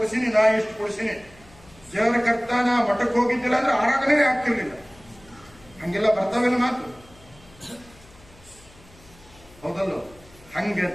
ನಾ ಇಷ್ಟು ಕೊಡಿಸೀನಿ. ದೇವರ ಕರ್ತ ನಾ ಮಠಕ್ಕೆ ಹೋಗಿದ್ದಿಲ್ಲ ಅಂದ್ರೆ ಆರಾಧನೆ ಆಗ್ತಿರ್ಲಿಲ್ಲ. ಹಂಗೆಲ್ಲ ಬರ್ತಾವೆಲ್ಲ ಮಾತು, ಹೌದಲ್ಲೋ? ಹಂಗ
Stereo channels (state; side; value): noise; left; hum, 25 dB below the sound